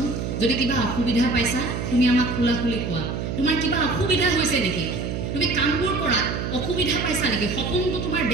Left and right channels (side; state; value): right; noise; hum, 4 dB below the sound